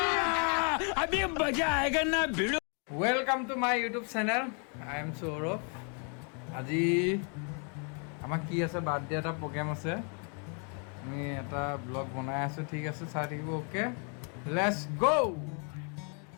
अभी मजा आएगा ना भिड़ो welcome to my YouTube channel I am Saurabh আজি আমাৰ কি আছে বাৰ্থডে এটা প্ৰগ্ৰাম আছে আমি এটা ব্লগ বনাই আছো ঠিক আছে চাই থাকিব ওকে লেটস গো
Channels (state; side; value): quieter; right; 39.4 dB